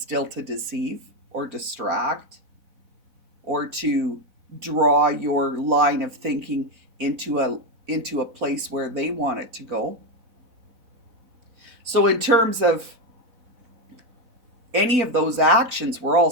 still to deceive or distract or to draw your line of thinking into a place where they want it to go. So in terms of any of those actions, we're all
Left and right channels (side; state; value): left; late; 4.0 ms